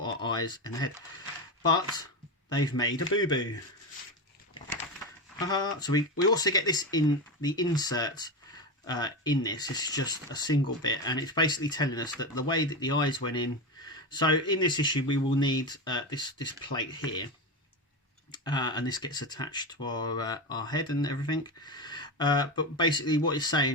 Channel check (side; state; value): both; normal; correlation 0.18